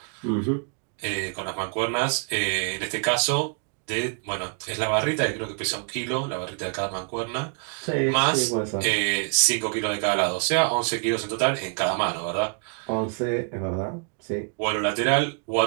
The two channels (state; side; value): quieter; left; 38.8 dB